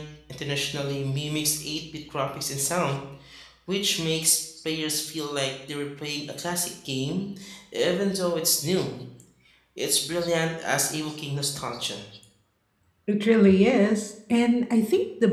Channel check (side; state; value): both; identical; correlation 1.00